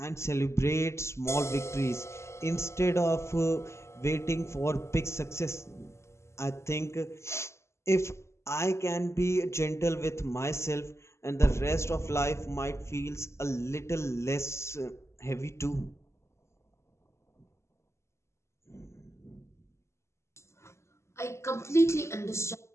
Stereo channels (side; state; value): right; late; 0.13 ms